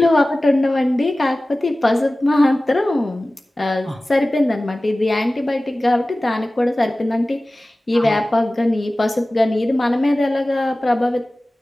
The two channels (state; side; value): normal; both; correlation 0.97